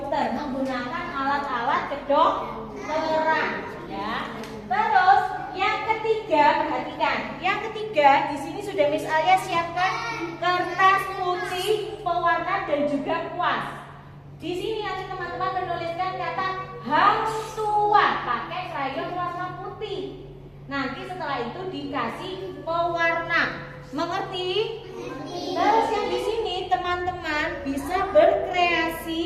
menggunakan alat-alat kedokteran. Ya. Terus yang ketiga, perhatikan. Yang ketiga di sini sudah Miss Alia siapkan kertas putih, pewarna dan juga kuas. Di sini nanti teman-teman menuliskan kata hang tua pakai krayon warna putih. Nanti setelah itu dikasih pewarna. Mengerti? Terus yang di sini teman-teman bisa berkreasi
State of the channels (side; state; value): both; identical; correlation 1.00